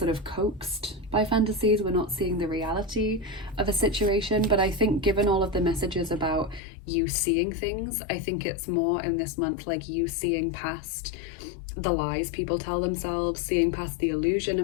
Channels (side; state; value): right; drops out; at 6.6 s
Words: of coaxed by fantasies. We're not seeing the reality of a situation, but I think given all of the messages about you seeing things, I think it's more in this month like you seeing past the lies people tell themselves, seeing past the illusion